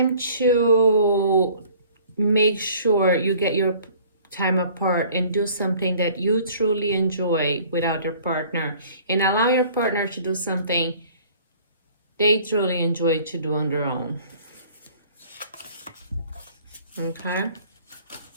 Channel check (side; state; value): both; inverted; correlation -0.52